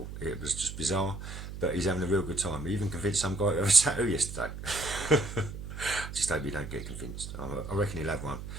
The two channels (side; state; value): right; noise; hum, 9 dB below the sound